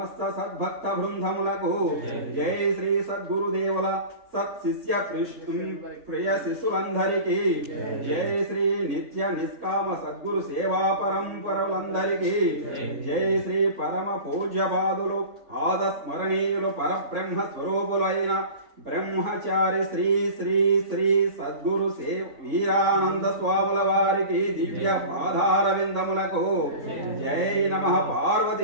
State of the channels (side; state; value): left; late; 3.5 ms